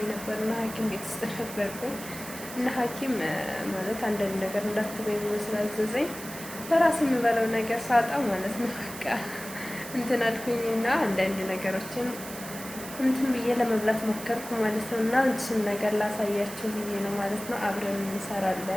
ነበርና ሐኪም ቤት ውስጥ ነበርኩኝ እና ሐኪም ማለት አንዳንድ ነገር እንዳትበይ ብሎ ስላዘዘኝ በራሴ የምበለው ነገር ሳጣ ማለት ነው በቃ እንትን አልኩኝና አንዳንድ ነገሮችን እንትን ብዬ ለመብላት ሞከርኩ ማለት ነው። እና እሱን ነገር ላሳያችሁ ብዬ ነው ማለት ነው። አብረን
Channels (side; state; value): right; noise; hiss, 12 dB below the sound